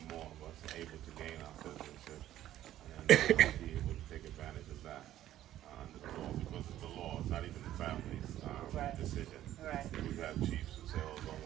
more of us able to gain our citizenship and be able to take advantage of that under the law, because it's the law, it's not even the family's decision. We've had chiefs who say, oh, don't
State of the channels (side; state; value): left; quieter; 12.9 dB